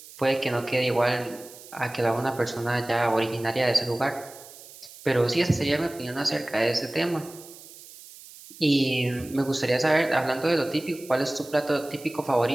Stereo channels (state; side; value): noise; right; hiss, 18 dB below the sound